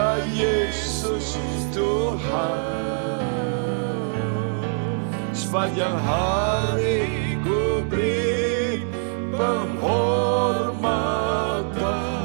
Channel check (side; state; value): left; silent; 63 dB below the other